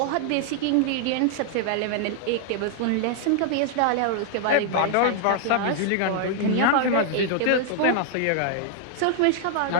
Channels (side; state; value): both; different; correlation 0.00